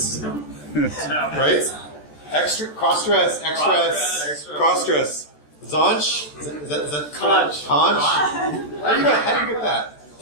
right? Extra, cross-stress, X-stress, cross-stress. Zonch? Is that Conch. Conch? How do you get that?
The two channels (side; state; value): right; late; 14 ms